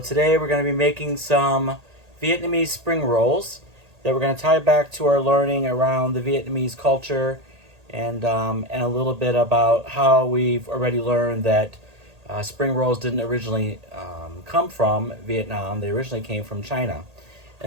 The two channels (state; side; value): late; left; 1.8 ms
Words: we're going to be making some Vietnamese spring rolls that we're going to tie back to our learning around the Vietnamese culture and a little bit about how we've already learned that spring rolls didn't originally come from Vietnam. They originally came from China.